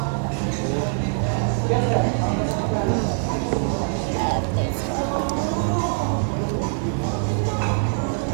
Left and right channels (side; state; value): left; silent; 63 dB below the other